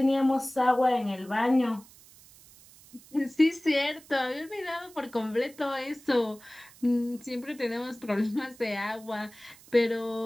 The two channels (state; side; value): noise; right; hiss, 23 dB below the sound